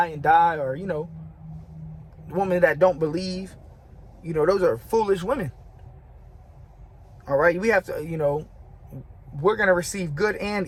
and die, or, you know, women that don't believe, you know, those are foolish women. All right, we have to, you know, we're going to receive good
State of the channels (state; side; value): identical; both; correlation 1.00